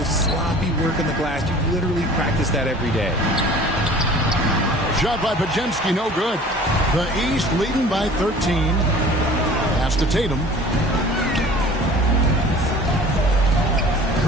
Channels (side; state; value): both; normal; correlation 0.46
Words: sloppy work on the glass. You literally practice that every day. Shot by Pajemski, no good. The East leading by 13. Pass to Tatum.